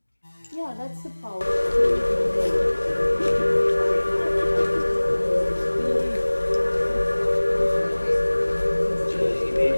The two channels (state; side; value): inverted; both; correlation -1.00